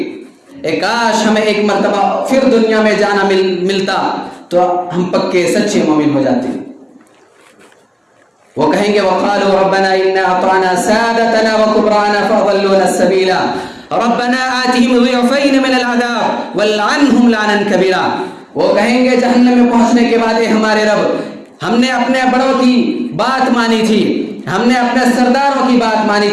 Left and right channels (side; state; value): both; identical; correlation 1.00